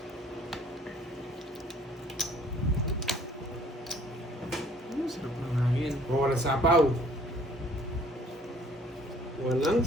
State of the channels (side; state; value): both; normal; correlation 0.57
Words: Sarap ng hangin. O, walang sapaw. Walang